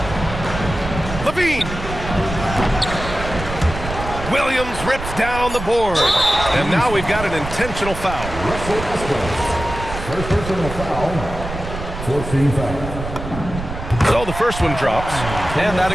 Levine. Williams rips down the board. And now we've got an intentional foul. Russell Westbrook. First personal foul. 14 foul. So the first one drops, and that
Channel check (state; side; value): noise; right; rumble, 8 dB below the sound